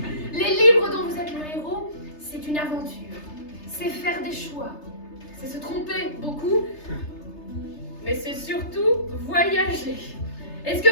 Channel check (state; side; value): late; right; 3.3 ms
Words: Les livres dont vous êtes le héros, c'est une aventure. C'est faire des choix. C'est se tromper beaucoup. Mais c'est surtout voyager. Est-ce que